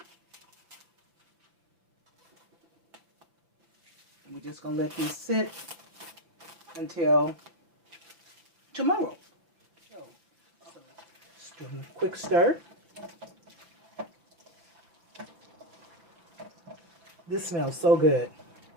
And we're just going to let these sit until tomorrow. So just do a quick stir. This smells so good.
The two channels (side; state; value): left; late; 5.9 ms